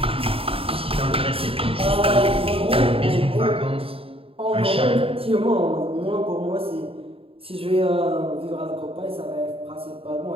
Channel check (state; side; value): late; left; 0.27 ms